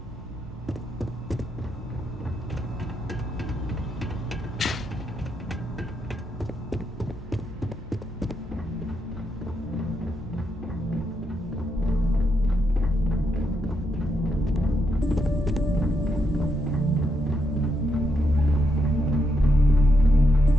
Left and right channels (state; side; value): normal; both; correlation 0.81